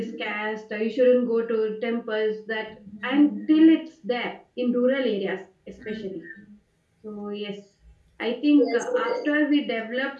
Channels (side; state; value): both; identical; correlation 1.00